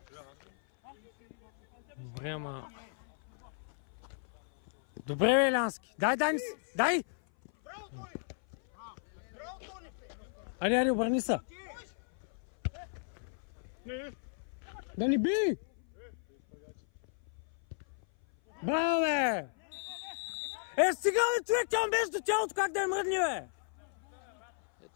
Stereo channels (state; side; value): silent; right; 55 dB below the other